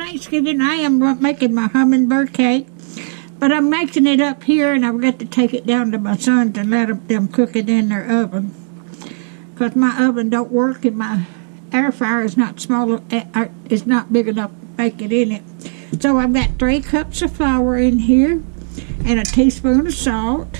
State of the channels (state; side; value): silent; left; 68 dB below the other